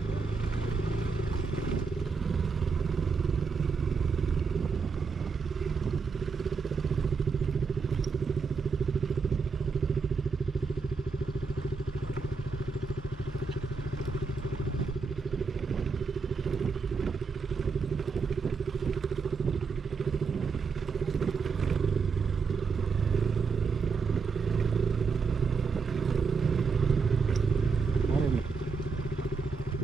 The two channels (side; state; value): left; quieter; 5.1 dB